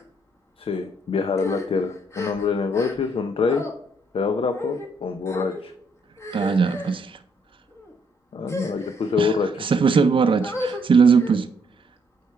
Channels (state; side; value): normal; both; correlation 0.71